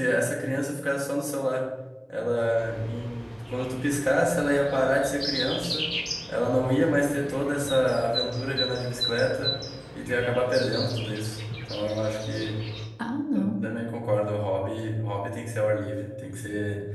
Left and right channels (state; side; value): identical; both; correlation 1.00